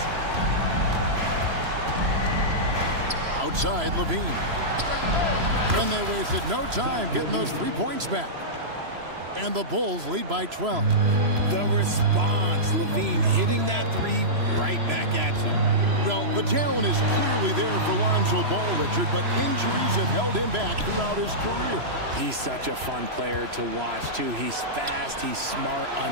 Outside, LaVine. And they wasted no time getting those 3 points back. And the Bulls lead by 12. The response, Levine hitting that three right back at you. Well, the talent is clearly there for Lonzo Ball, Richard, but injuries have held him back throughout his career. He's such a fun player to watch, too. He's fast, he's smart,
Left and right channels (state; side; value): late; left; 3.0 ms